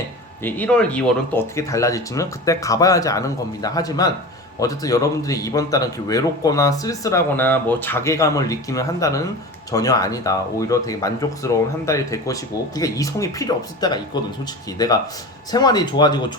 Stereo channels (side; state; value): both; normal; correlation 0.31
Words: 1월, 2월은 또 어떻게 달라질지는 그때 가봐야지 아는 겁니다. 하지만 어쨌든 여러분들이 이번 달은 이렇게 외롭거나 쓸쓸하거나 뭐 자괴감을 느끼는 한 달은 전혀 아니다. 오히려 되게 만족스러운 한 달이 될 것이고 그게 이성이 필요 없을 때가 있거든. 솔직히 내가 생활이 좋아지고